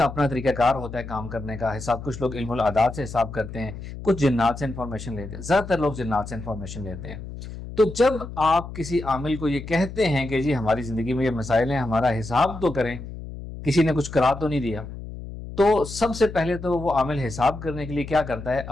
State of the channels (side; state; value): left; noise; hum, 11 dB below the sound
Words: अपना तरीक़ाकार होता है काम करने का। हिसाब कुछ लोग इल्मुल आदात से हिसाब करते हैं, कुछ जिन्नात से इन्फॉर्मेशन लेते हैं। ज़्यादातर लोग जिन्नात से इन्फॉर्मेशन लेते हैं। तो जब आप किसी आमिल को ये कहते हैं कि जी हमारी ज़िंदगी में ये मसाइल हैं, हमारा हिसाब तो करें, किसी ने कुछ करा तो नहीं दिया, तो सबसे पहले तो वो आमिल हिसाब करने के लिए क्या करता है,